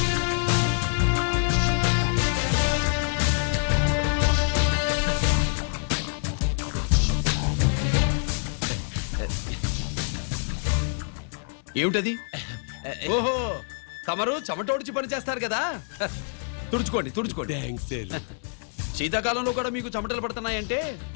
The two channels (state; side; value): silent; right; digital silence